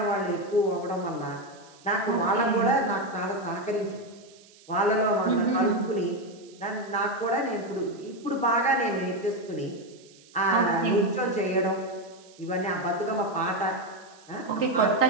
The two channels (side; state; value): right; noise; hiss, 25 dB below the sound